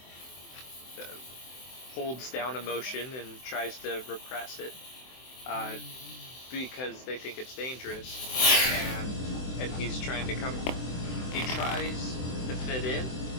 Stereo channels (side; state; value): right; late; 23 ms